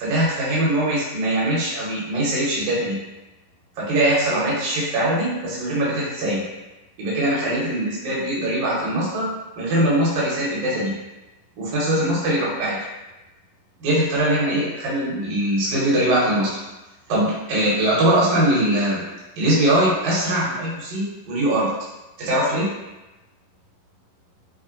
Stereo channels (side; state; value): left; late; 11 ms